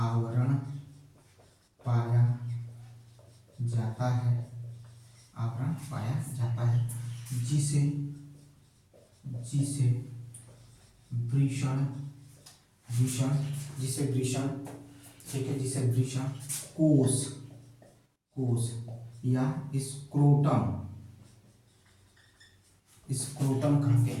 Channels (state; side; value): identical; both; correlation 1.00